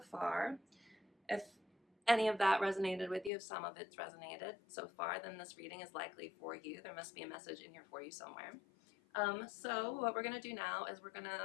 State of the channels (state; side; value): drops out; right; at 3.3 s